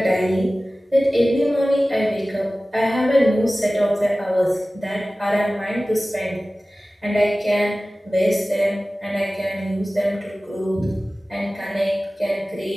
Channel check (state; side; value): normal; both; correlation 0.97